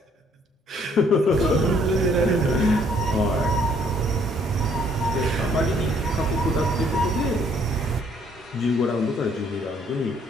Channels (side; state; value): both; normal; correlation 0.64